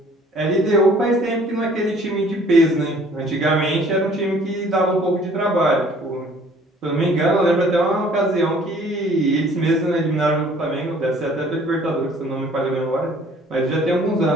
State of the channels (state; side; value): normal; both; correlation 0.55